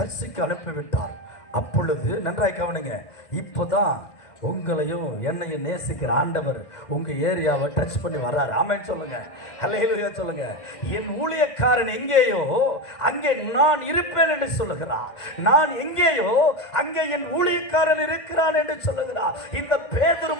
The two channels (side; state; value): right; late; 2.0 ms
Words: அனுப்பிவிட்டார். அப்பொழுது நன்றாய் கவனிங்க, இப்போதான் உங்களையும் என்னையும் நேசிக்கிற ஆண்டவர் உங்க ஏரியாவை டச் பண்ணி வர்றாரு. ஆமென் சொல்லுங்க. ஹல்லேலூயா சொல்லுங்க. என் ஊழியக்காரன் எங்கேயோ அங்கே நான் இருப்பேன் என்று சொல்லுகிறார். நான் எங்கேயோ அங்கே என் ஊழியக்காரன் இருக்கிறான் என்று சொல்லுகிறார். இந்த பேதுரு